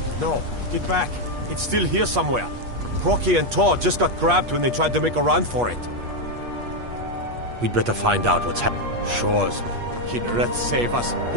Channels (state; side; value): late; left; 8.4 ms